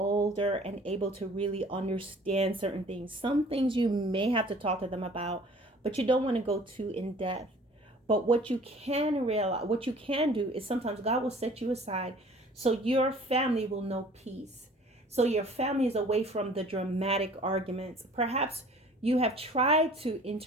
and able to really understand certain things. Some things you may have to talk to them about, but you don't want to go too in depth. But what you can do is sometimes God will set you aside so your family will know peace. So your family is away from the dramatic arguments. Perhaps you have tried to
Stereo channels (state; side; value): normal; both; correlation 0.50